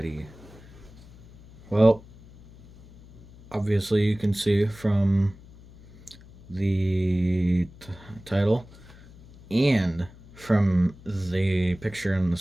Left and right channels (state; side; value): noise; left; hum, 22 dB below the sound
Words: Well, obviously, you can see from the title and from the picture on the